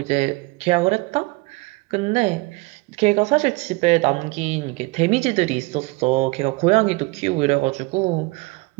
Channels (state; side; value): quieter; left; 24.6 dB